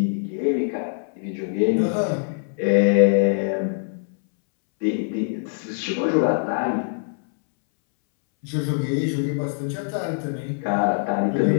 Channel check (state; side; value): silent; right; 63 dB below the other